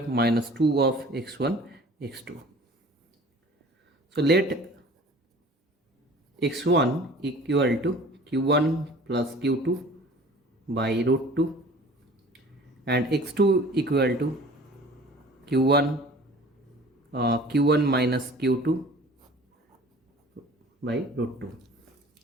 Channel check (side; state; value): both; normal; correlation 0.46